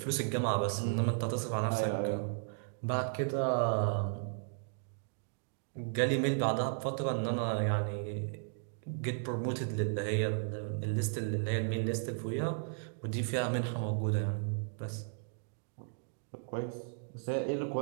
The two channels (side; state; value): left; silent; digital silence